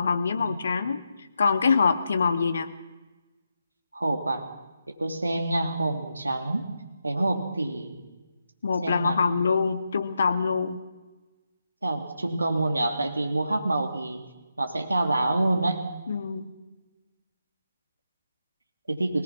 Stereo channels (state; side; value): inverted; both; correlation -0.85